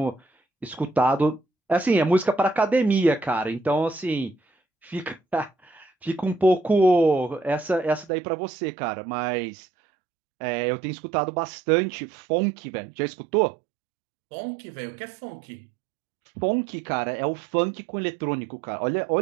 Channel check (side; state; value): left; drops out; at 8.1 s